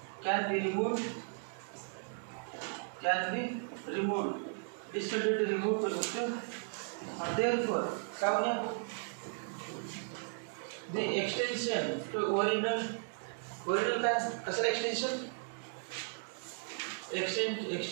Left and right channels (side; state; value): left; silent; 54 dB below the other